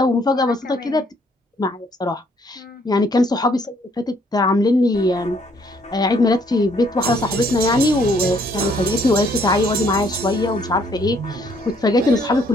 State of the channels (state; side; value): normal; both; correlation 0.65